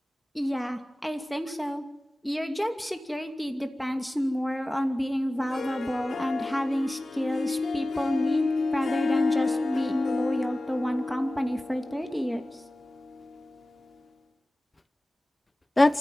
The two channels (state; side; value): normal; both; correlation 0.97